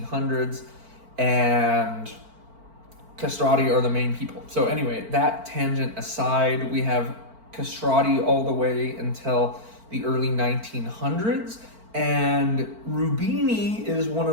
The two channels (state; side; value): late; left; 4.5 ms